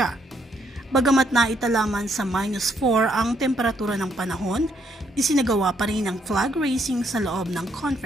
Bagamat naitalaman sa -4 ang temperatura ng panahon, isinagawa pa rin ang flag raising sa loob ng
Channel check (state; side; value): normal; both; correlation 0.72